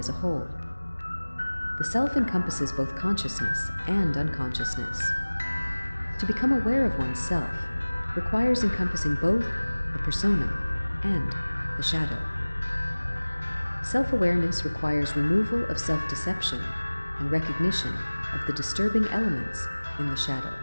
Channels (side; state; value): both; inverted; correlation -1.00